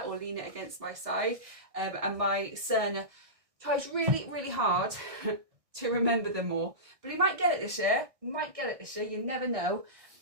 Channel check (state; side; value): late; left; 1.6 ms